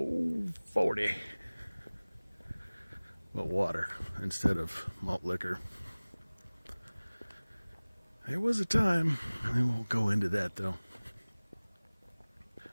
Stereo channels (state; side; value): inverted; both; correlation -1.00